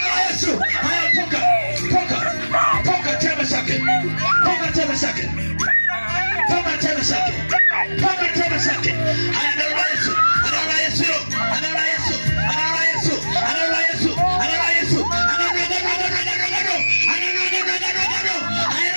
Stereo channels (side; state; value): both; inverted; correlation -1.00